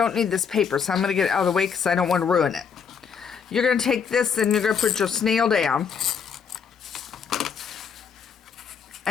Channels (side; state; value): right; quieter; 6.7 dB